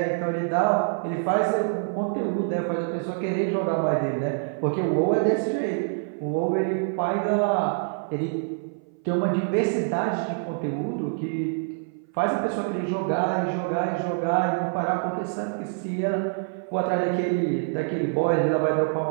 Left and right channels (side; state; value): left; silent; 58 dB below the other